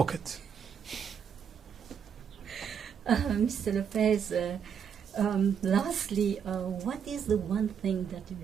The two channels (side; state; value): left; quieter; 7.5 dB